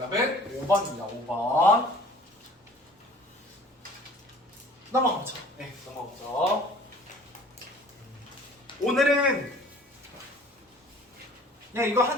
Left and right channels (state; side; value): normal; both; correlation 0.49